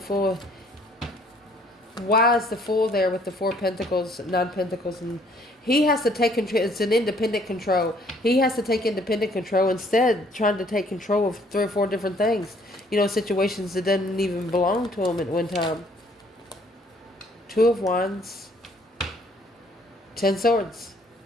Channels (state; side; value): normal; both; correlation 0.62